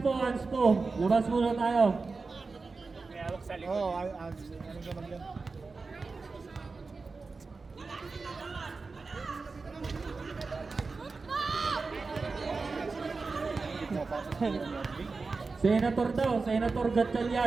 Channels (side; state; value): left; quieter; 4.2 dB